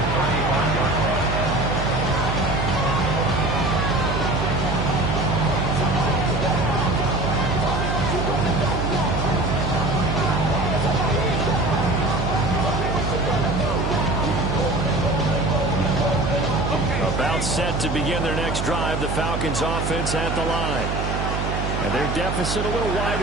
35-yard line. About set to begin their next drive, the Falcons offense at the line. And their deficit a little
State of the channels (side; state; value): right; noise; hum, 2 dB below the sound